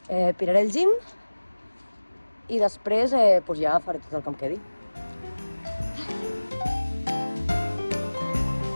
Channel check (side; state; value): both; inverted; correlation -1.00